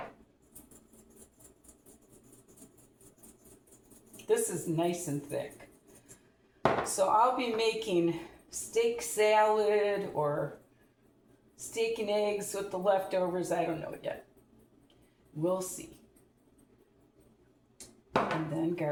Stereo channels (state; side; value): identical; both; correlation 1.00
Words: This is nice and thick. So I'll be making steak salad or steak and eggs with the leftovers. I don't know yet. We'll see. And then